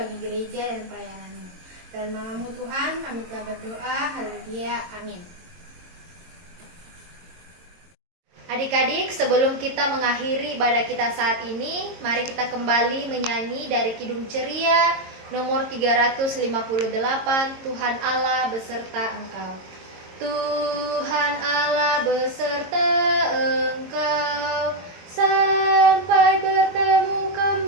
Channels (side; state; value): left; late; 22 ms